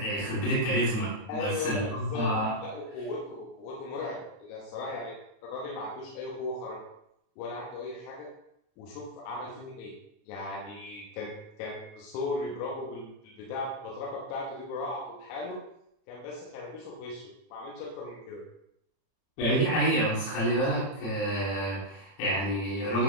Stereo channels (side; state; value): right; late; 31 ms